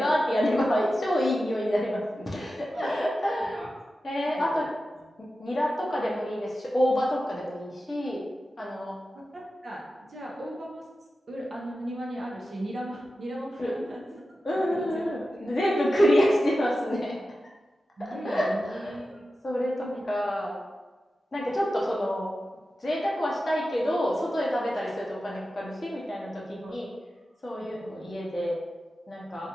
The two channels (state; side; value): normal; both; correlation 0.93